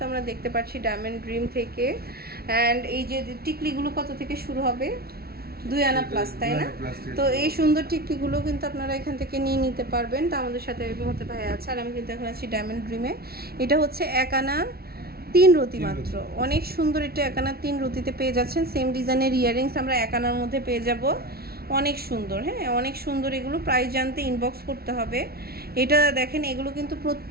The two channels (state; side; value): late; left; 0.45 ms